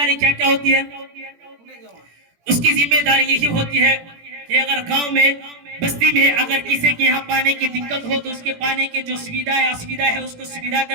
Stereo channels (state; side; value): late; left; 17 ms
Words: کیا کیا ہوتی ہے؟ اس کی ذمہ داری یہی ہوتی ہے کہ اگر گاؤں میں بستی میں اگر کسی کے یہاں پانی کی دقت ہو تو اس کے پانی کے جو سویدھا ہے اس کو سویدھا